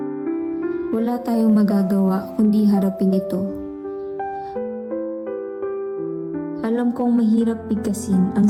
Wala tayong magagawa kundi harapin ito. Alam kong mahirap bigkasin ang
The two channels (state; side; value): identical; both; correlation 1.00